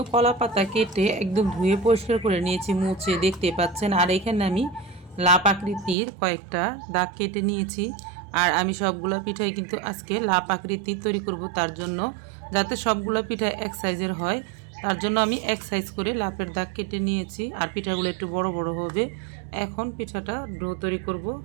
কলা পাতা কেটে একদম ধুয়ে পরিষ্কার করে নিয়েছি, মুছে দেখতে পাচ্ছেন। আর এখানে আমি লাপ আকৃতির কয়েকটা দাগ কেটে নিয়েছি। আর আমি সবগুলো পিঠাই কিন্তু আজকে লাপ আকৃতির তৈরি করব, তার জন্য যাতে সবগুলো পিঠা এক সাইজের হয় তার জন্য আমি এক সাইজ করে লাপের দাগ কেটে নিয়েছি। আর পিঠাগুলো একটু বড় বড় হবে। এখন পিঠাটা ডো তৈরি করব।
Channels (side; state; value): left; drops out; at 6.0 s